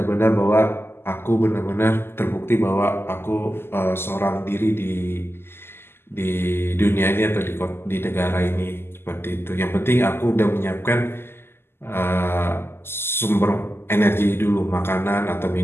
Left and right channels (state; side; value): late; right; 0.12 ms